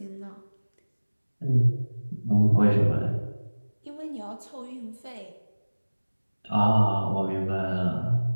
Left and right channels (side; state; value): both; inverted; correlation -1.00